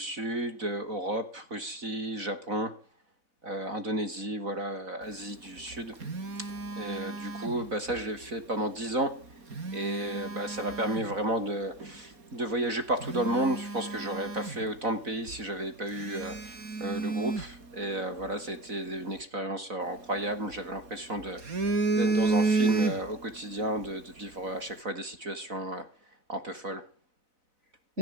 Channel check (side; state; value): left; late; 4.2 ms